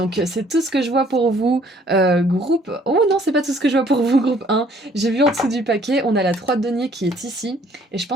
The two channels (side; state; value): both; normal; correlation 0.61